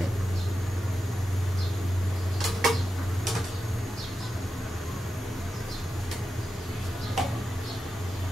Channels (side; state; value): both; normal; correlation 0.90